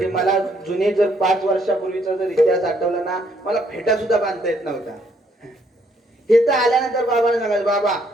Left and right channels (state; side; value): normal; both; correlation 0.69